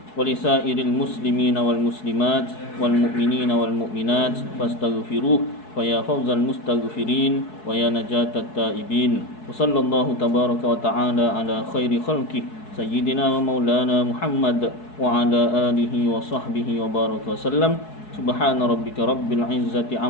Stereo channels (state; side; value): late; right; 4.7 ms